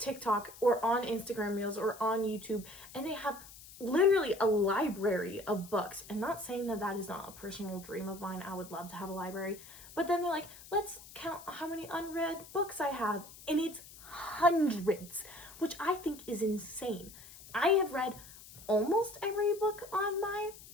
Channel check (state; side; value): noise; left; hiss, 18 dB below the sound